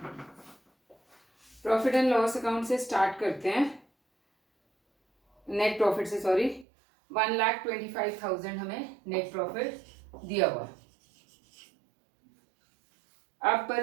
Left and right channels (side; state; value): left; drops out; at 6.7 s